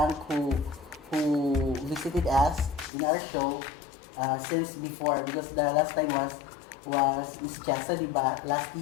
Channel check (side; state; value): right; drops out; at 2.9 s